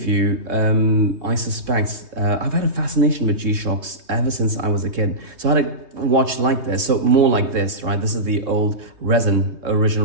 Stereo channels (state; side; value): late; left; 3.2 ms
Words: you, I suspect, I've had a fascination with G-Shocks ever since I was a kid. So I had a watch like this, so more like this, right? This is the old resin,